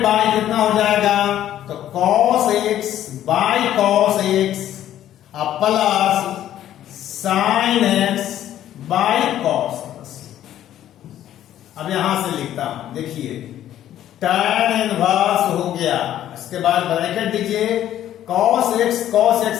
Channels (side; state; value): right; quieter; 11.9 dB